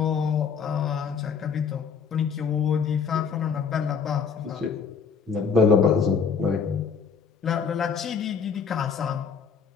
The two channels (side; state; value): right; quieter; 6.1 dB